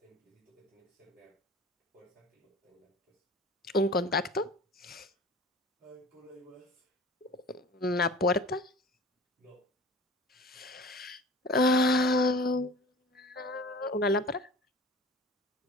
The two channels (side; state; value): both; normal; correlation 0.42